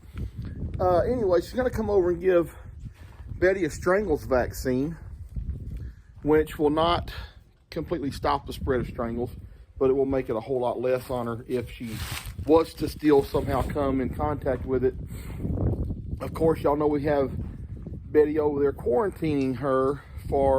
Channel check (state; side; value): identical; both; correlation 1.00